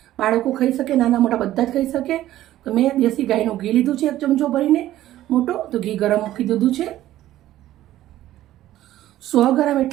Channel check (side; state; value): left; quieter; 13.9 dB